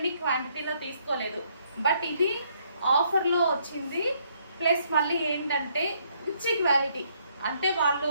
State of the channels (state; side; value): inverted; both; correlation -0.69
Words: క్వాంటిటీలో తీసుకోలేదు. బట్ ఇది ఆఫర్లో వచ్చింది. ప్లస్ మళ్ళీ ఏంటంటే మంచి క్వాలిటీ, అంటే